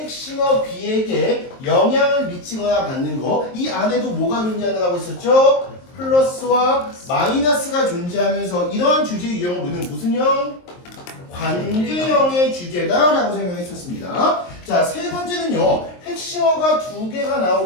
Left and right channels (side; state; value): right; late; 23 ms